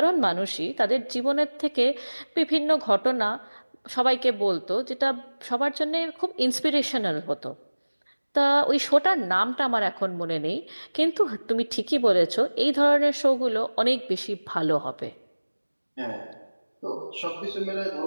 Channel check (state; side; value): inverted; both; correlation -1.00